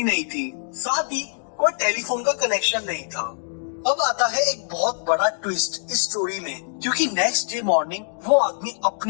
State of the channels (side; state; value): right; silent; 63 dB below the other